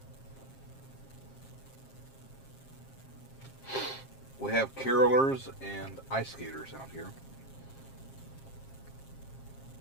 We have carolers and ice skaters out here.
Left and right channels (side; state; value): right; late; 7.5 ms